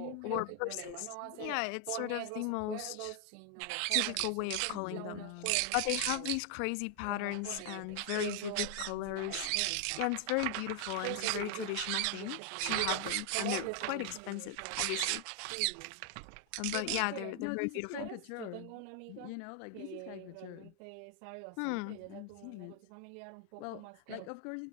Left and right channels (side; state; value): both; different; correlation 0.00